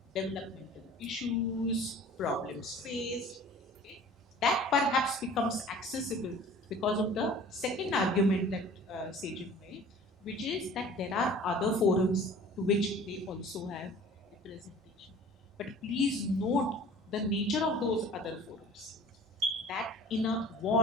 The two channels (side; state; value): both; normal; correlation 0.45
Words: developmental issues, problems faced. Okay? That perhaps becomes accessible because of the second argument that Sejal made, which is that there are other forums to which they also have representation. But please note the nature of those other forums. That in a